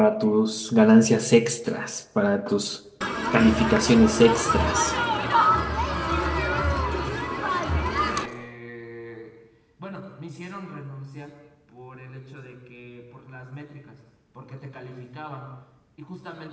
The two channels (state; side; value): identical; both; correlation 1.00